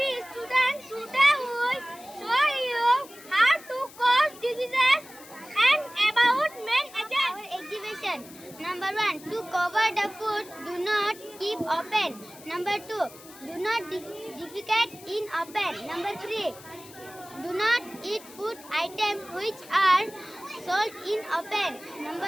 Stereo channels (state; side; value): noise; left; hiss, 19 dB below the sound